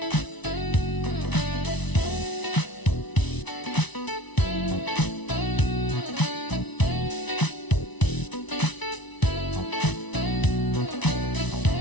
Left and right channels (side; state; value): right; late; 1.0 ms